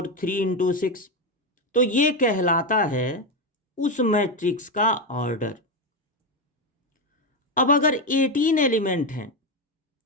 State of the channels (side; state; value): both; normal; correlation 0.10